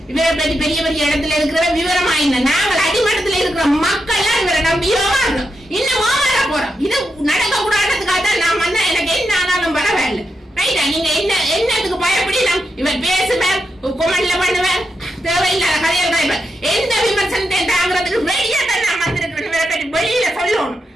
இவரை பற்றி பெரிய பெரிய இடத்துல இருக்கிற விவரமா இல்லை. நாங்கள் அடிமட்டத்தில் இருக்கிற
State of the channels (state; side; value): normal; both; correlation 0.85